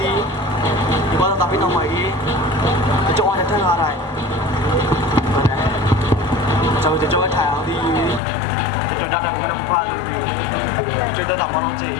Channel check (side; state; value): right; drops out; at 8.2 s